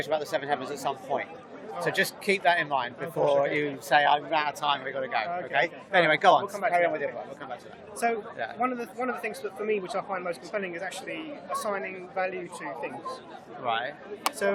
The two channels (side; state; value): both; identical; correlation 1.00